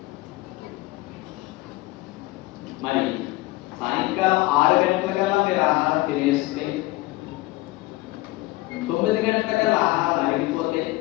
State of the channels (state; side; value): quieter; right; 19.6 dB